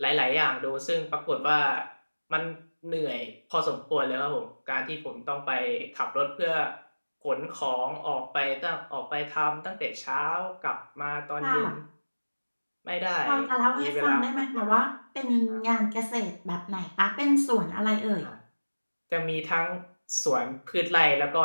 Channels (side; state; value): both; inverted; correlation -1.00